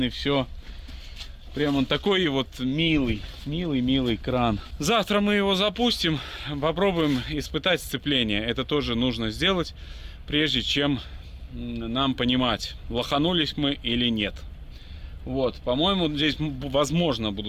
и все. Прям он такой вот милый кран. Завтра мы его запустим, попробуем испытать сцепление. Это тоже нужно сделать, прежде чем нам понимать, лоханулись мы или нет. Вот, по-моему, здесь, возможно,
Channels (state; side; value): identical; both; correlation 1.00